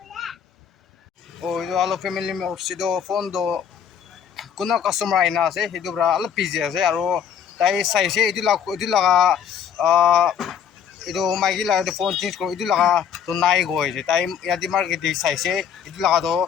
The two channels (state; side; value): quieter; right; 8.2 dB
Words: এইটো অলপ ফেমিলি মেম্বাৰ্ছ ফোনটো কোনো কাষ্টমাৰ আহি না আছে সেইটো পৰা অলপ বিজি আছে আৰু তাই চাইছে এইটো লগা এইটো মাইকী লগাটো ফোন চেঞ্জ কৰোঁ এইটো লগাটো নাই গৈ আছে তাই ইয়াতে মাৰ্কেট চাইছে এইটো লগাটো